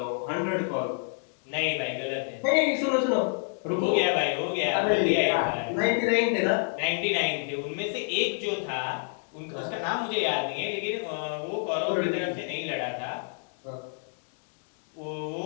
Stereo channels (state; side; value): silent; right; 59 dB below the other